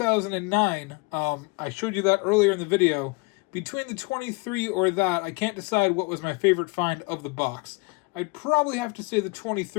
I showed you that earlier in the video. Between the 23 or that, I can't decide what was my favorite find of the box. I'd probably have to say the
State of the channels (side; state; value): right; quieter; 28.2 dB